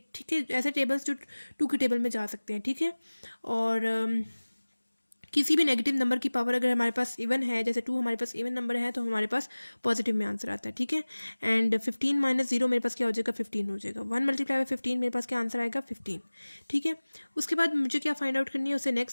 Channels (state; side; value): inverted; both; correlation -1.00